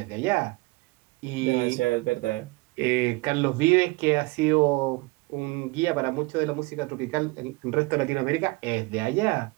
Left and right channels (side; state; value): left; quieter; 24.1 dB